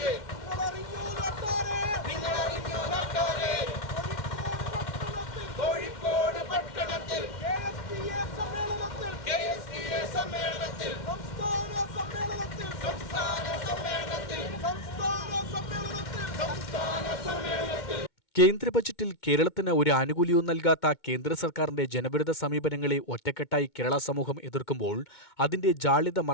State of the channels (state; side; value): late; right; 2.3 ms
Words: കേന്ദ്ര ബജറ്റിൽ കേരളത്തിന് ഒരു ആനുകൂല്യവും നൽകാത്ത കേന്ദ്ര സർക്കാരിന്റെ ജനവിരുദ്ധ സമീപനങ്ങളെ ഒറ്റക്കെട്ടായി കേരള സമൂഹം എതിർക്കുമ്പോൾ അതിന്റെ ജാള്യത